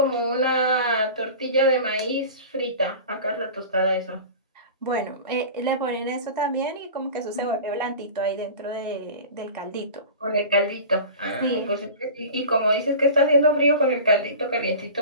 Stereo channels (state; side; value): inverted; both; correlation -0.35